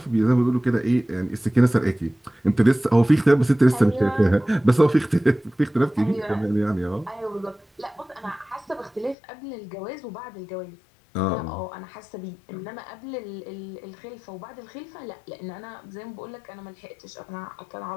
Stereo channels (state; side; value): drops out; right; at 9.2 s